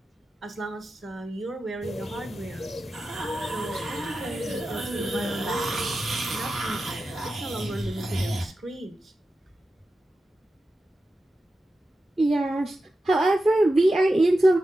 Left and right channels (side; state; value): both; normal; correlation 0.92